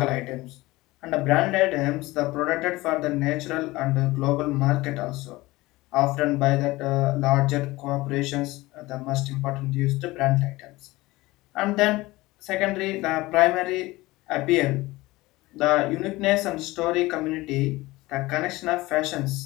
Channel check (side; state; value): right; quieter; 19.9 dB